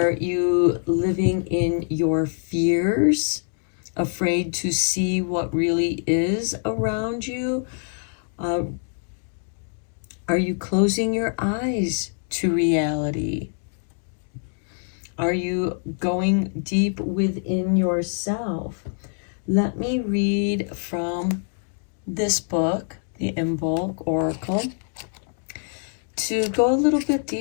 you living in your fears, afraid to see what really is around you? Are you closing your eyes to reality? Are you going deep within yourself? Let me read from this book, the Imbolc Oracle, to go a little bit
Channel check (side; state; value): right; silent; 62 dB below the other